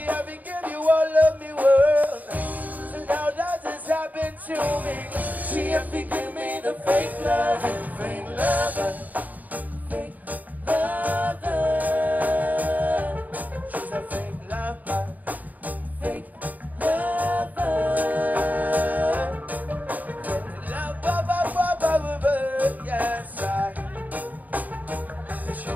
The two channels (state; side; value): late; left; 0.080 ms